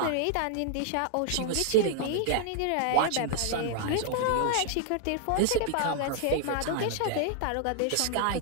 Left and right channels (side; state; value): both; different; correlation 0.00